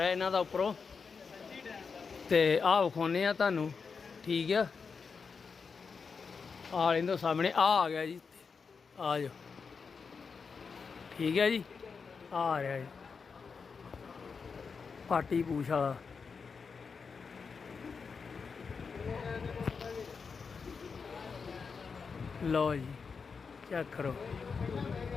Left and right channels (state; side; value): quieter; right; 5.4 dB